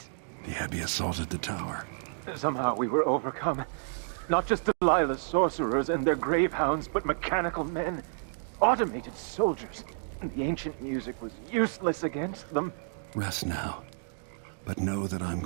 The Abbey assaulted the tower. Somehow we were overcome. Not just Delilah's sorcerers and their gravehounds, but mechanical men. Automated soldiers. The ancient music was useless against them. Rest now. But know that I'm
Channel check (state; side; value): silent; left; digital silence